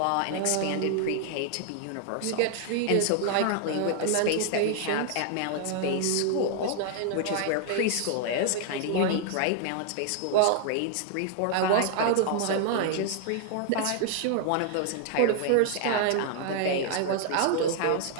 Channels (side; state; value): both; different; correlation 0.00